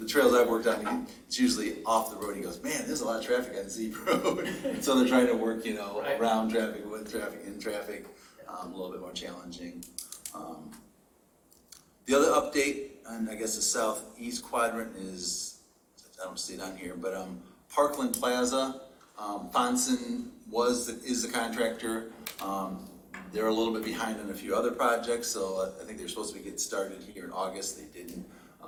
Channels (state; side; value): identical; both; correlation 1.00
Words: trails I've worked on, it's usually off the road. He goes, man, there's a lot of traffic on Z Road. So they're trying to work, Right. around traffic, with traffic, in traffic, a little bit more challenging. The other update on, I guess, the southeast quadrant is, I don't see it on here, but Parkland Plaza. Fonson is the contractor. They're a little bit behind on a few other projects, so I think they're supposed to be getting started here in August. They didn't.